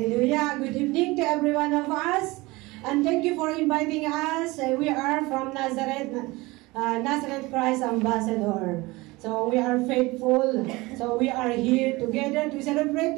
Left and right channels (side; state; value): left; quieter; 22.1 dB